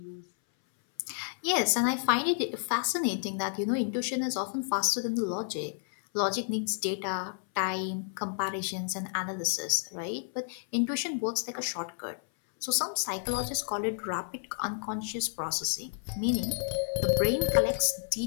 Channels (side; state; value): right; silent; 57 dB below the other